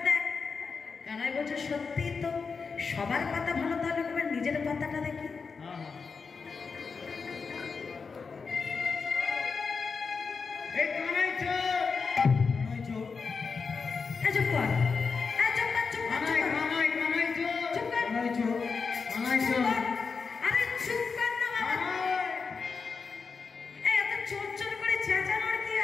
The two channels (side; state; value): right; quieter; 5.1 dB